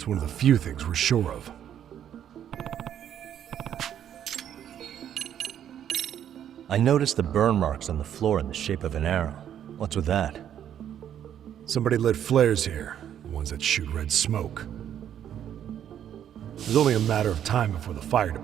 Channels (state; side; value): quieter; left; 9.9 dB